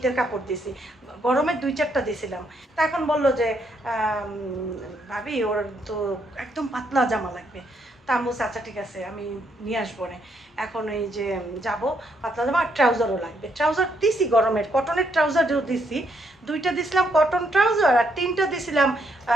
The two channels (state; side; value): normal; both; correlation 0.74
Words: কাপড় দিছি, গরমের 2-4টা দিছিলাম। তা এখন বললো যে ভাবি ওর তো একদম পাতলা জামা লাগবে। তা আমি বলছি আচ্ছা ঠিক আছে আমি নিয়ে আসবো না। এখন এই যে যাব, পাতলা জামা আর ট্রাউজারও লাগবে। ট্রাউজার দিছি গরমের, কটনের ট্রাউজারও দিছি, 2টা দিছিলাম কটন ট্রাউজার আর 3টা দিছিলাম